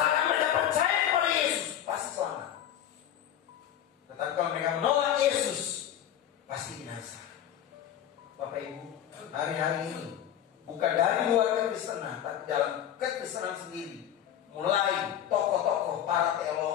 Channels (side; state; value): right; quieter; 10.6 dB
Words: mereka percaya kepada Yesus, pasti selamat. Tetapi kalau mereka menolak Yesus, pasti binasa. Bapak Ibu, hari-hari ini bukan dari luar kekristenan, tapi dalam kekristenan sendiri, mulai tokoh-tokoh, para